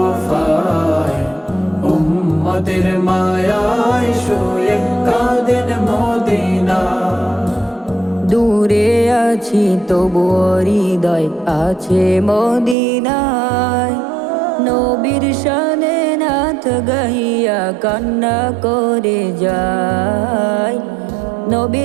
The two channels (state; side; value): drops out; left; at 12.8 s